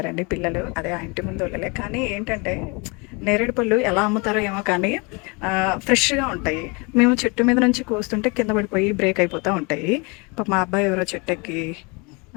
పిల్లలు. అదే ఆ ఇంటి ముందు వాళ్ళలే. కానీ ఏంటంటే నేరేడు పళ్ళు ఎలా అమ్ముతారో ఏమో కానీ ఫ్రెష్గా ఉంటాయి. మేము చెట్టు మీద నుంచి కోస్తుంటే కింద పడిపోయి బ్రేక్ అయిపోతూ ఉంటాయి. మా అబ్బాయి ఎవరో చెట్టెక్కి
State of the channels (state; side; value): quieter; right; 29.5 dB